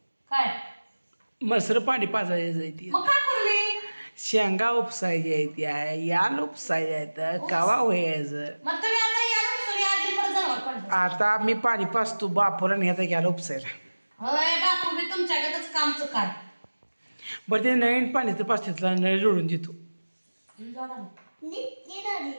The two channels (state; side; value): inverted; both; correlation -1.00